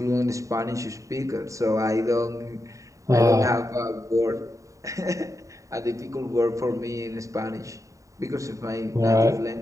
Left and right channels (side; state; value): left; late; 0.16 ms